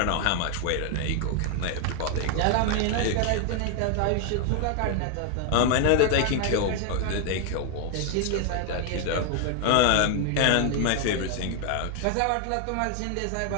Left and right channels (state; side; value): different; both; correlation 0.00